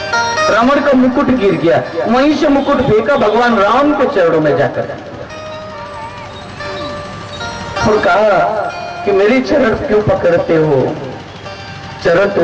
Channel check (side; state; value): both; identical; correlation 1.00